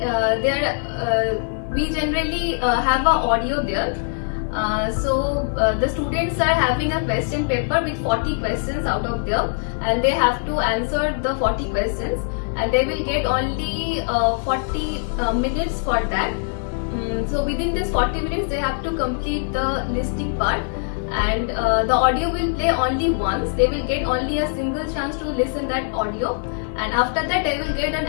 we generally have a audio there. The students are having a question paper with 40 questions out of there, and they have to answer the 40 questions, and they will get only 40 minutes for that. So within this 40 minutes they have to complete the listening part, and the audio will play only once. They will get only a single chance to listen that audio, and after that they will get an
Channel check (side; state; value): right; silent; digital silence